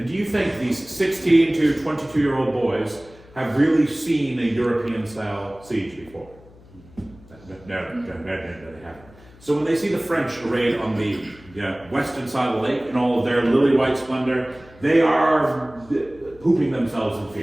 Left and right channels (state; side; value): noise; left; hum, 24 dB below the sound